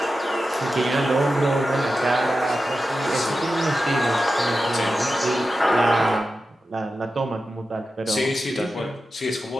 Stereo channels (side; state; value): both; normal; correlation 0.92